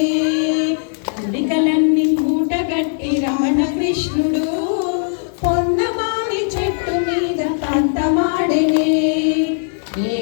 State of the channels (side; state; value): right; silent; digital silence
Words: ఉడికలన్నీ మూటగట్టి రమణ కృష్ణుడు పొన్నమామి చెట్టు మీద పందమాడినే